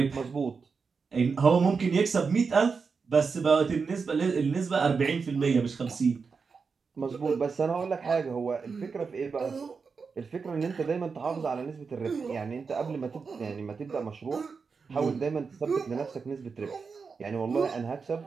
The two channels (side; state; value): left; quieter; 5.2 dB